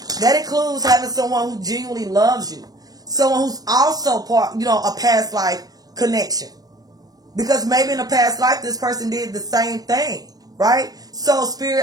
That includes having someone who genuinely loves you. Someone who's also part, you know, a past life connection. Because maybe in a past life, this person did the same thing. Right? So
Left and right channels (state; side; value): late; left; 0.18 ms